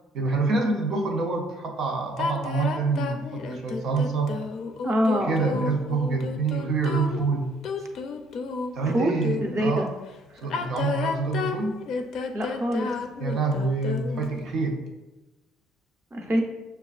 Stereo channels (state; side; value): normal; both; correlation 0.63